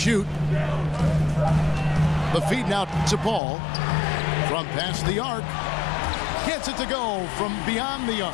The feed now to Paul from past the arc. Gets it to go from beyond the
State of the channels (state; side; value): drops out; right; at 3.4 s